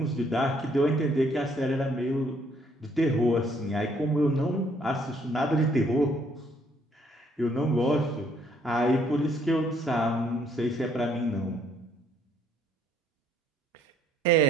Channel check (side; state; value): both; normal; correlation 0.66